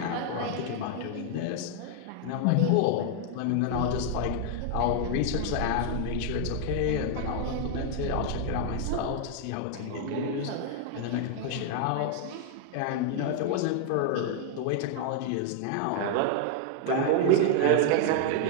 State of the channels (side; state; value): both; different; correlation 0.00